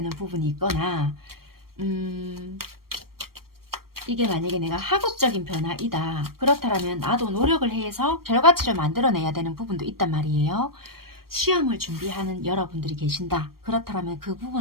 부분이 있거나 이게 만약에 내가 학업적인 변화이다. 그렇다면 나도 노력을 해서 결과치를 만들어내야 되는 부분도 있단 말이에요. 시험을 준비하는 여러분들이 계신다. 그렇다면 그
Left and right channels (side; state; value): left; late; 0.94 ms